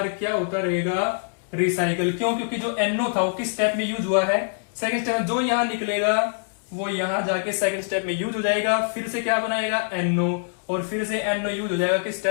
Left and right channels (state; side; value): silent; right; digital silence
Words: क्या होता रहेगा, रिसाइकल। क्यों, क्योंकि जो NO था वो किस स्टेप में यूज हुआ है, सेकंड स्टेप। जो यहाँ निकलेगा वो यहां जाके सेकंड स्टेप में यूज हो जाएगा, फिर से क्या बनाएगा NO, और फिर से NO यूज हो जाएगा किस